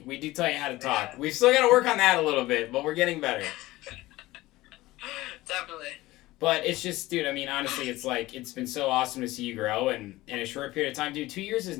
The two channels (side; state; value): right; quieter; 18.3 dB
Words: We do tell you how to talk. We've still got to work on that a little bit, but we're getting better. Definitely. But it's just, dude, I mean, honestly, it's like, it's been so awesome to see you grow, and in a short period of time, dude, 2 years is